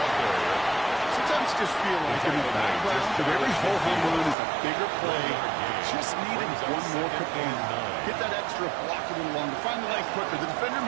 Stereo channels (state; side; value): drops out; left; at 4.4 s